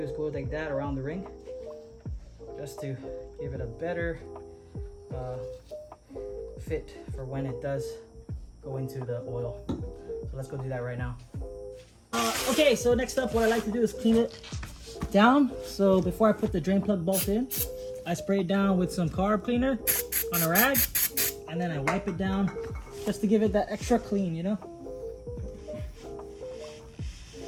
is go like that around the ring, just to give it a better fit for when it does go into the oil. So let's go do that right now. Okay, so next up, what I like to do is clean it down. So before I put the drain plug bolt in, I spray it down with some carb cleaner on a rag, and then I wipe it down just to give it that extra clean, you know?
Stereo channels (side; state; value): both; identical; correlation 1.00